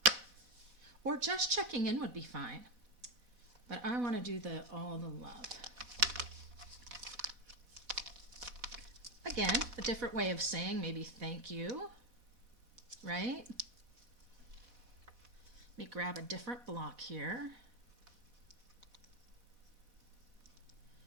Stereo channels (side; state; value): left; late; 4.1 ms